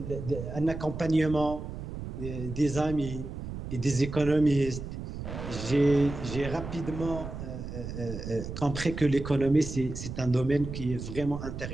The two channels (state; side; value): noise; right; rumble, 8 dB below the sound